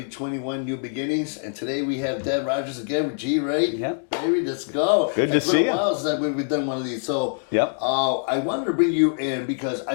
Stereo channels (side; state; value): right; silent; digital silence